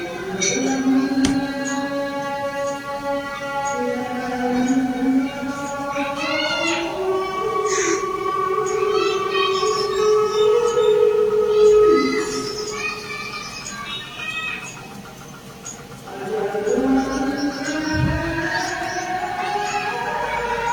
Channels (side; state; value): both; identical; correlation 1.00